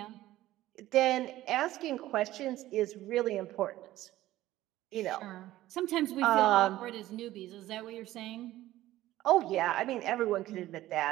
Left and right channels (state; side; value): quieter; left; 15.3 dB